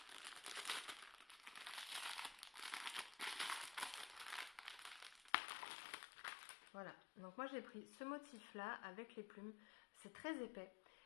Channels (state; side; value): drops out; right; at 5.3 s